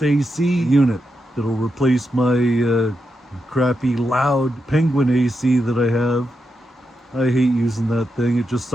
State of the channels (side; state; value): both; normal; correlation 0.86